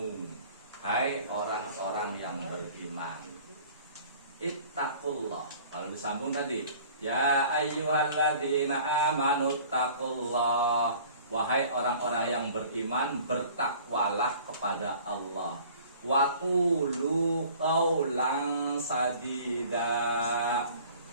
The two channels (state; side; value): inverted; both; correlation -0.49